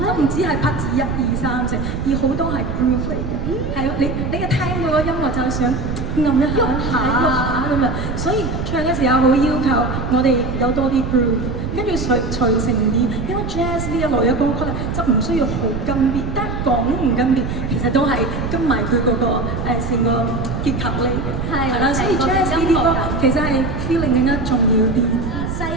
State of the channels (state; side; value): noise; right; rumble, 4 dB below the sound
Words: 都唔止係拍子1、2、3、4，而好多係 groove 嚟嘅。係你一聽到個音樂就係想撳一下、喐下咁樣，所以唱嘅時候好要求我哋有多啲 groove， 跟住隨成啲。因為 jazz 呢一類嘅歌曲咧，就唔需要好跟 beat， 但係講唔跟 beat， 其實都係跟埋佢嗰個成個結構嚟嘅。係啦，所以 jazz 呢啲歌其實係 feeling 更加重要啲。犀